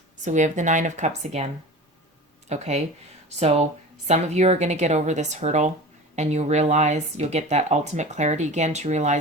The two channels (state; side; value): normal; both; correlation 0.35